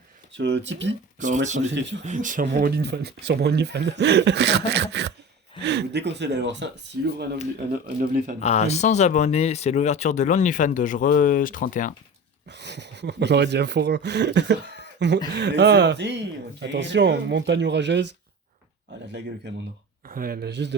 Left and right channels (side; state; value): both; normal; correlation 0.33